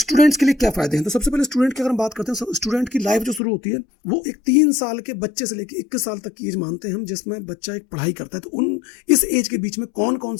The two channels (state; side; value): drops out; right; at 3.4 s